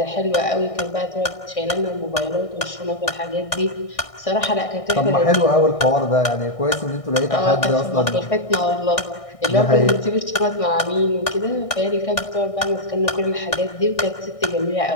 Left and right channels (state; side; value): late; right; 1.6 ms